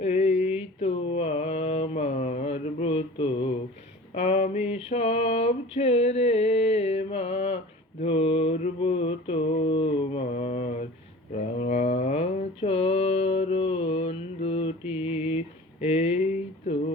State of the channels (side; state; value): both; normal; correlation 0.40